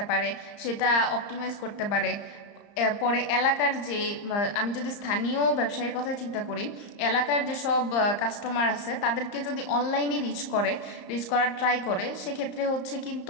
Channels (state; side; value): late; right; 34 ms